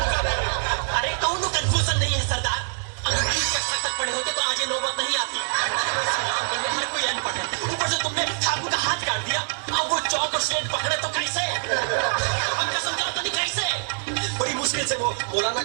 है। अरे कौन कंफ्यूजन नहीं है सरदार। अगर 20 कक्षा तक पढ़े होते तो आज ये नौबत नहीं आती। हर कोई अनपढ़ है, ऊपर से तुमने ठाकुर का हाथ काट दिया। अब वो चौक और स्लेट पकड़े तो कैसे? हम कसम चाहते नहीं कैसे? बड़ी मुश्किल से वो मौलाना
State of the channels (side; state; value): left; silent; digital silence